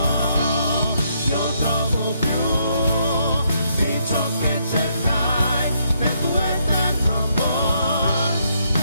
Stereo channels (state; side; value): inverted; both; correlation -0.74